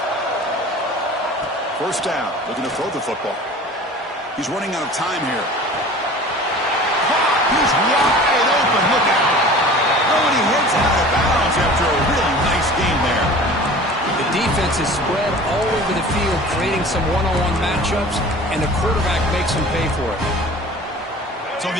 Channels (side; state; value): both; normal; correlation 0.42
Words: First down, looking to throw the football. He's running out of time here. He's wide open, look out. Oh, and he hits out of bounds after a really nice game there. The defense is spread all over the field, creating some one-on-one matchups, and the quarterback makes them pay for it. So